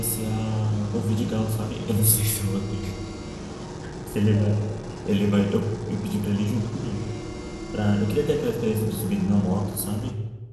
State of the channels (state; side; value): identical; both; correlation 1.00